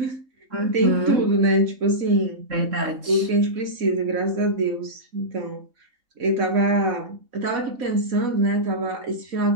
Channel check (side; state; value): left; late; 3.7 ms